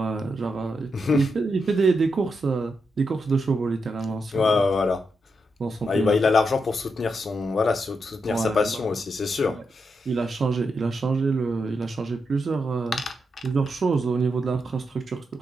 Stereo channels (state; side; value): normal; both; correlation 0.84